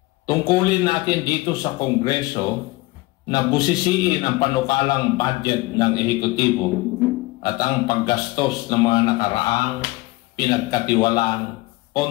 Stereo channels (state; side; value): quieter; right; 21.5 dB